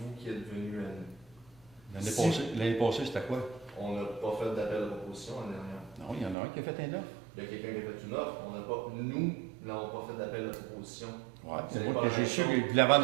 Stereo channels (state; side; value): drops out; left; at 6.4 s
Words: qui êtes venu à nous. L'année passée, c'était quoi? On n'a pas fait d'appel de proposition l'année dernière. Non, il y en a un qui a fait un offre. Il y a quelqu'un qui a fait une offre, nous n'avons pas fait d'appel de proposition. Ouais, C'est c'est moi pas que j'ai la su même qu'il chose. voulait vendre